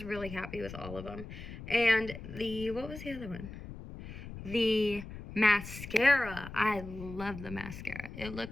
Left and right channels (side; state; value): left; noise; rumble, 12 dB below the sound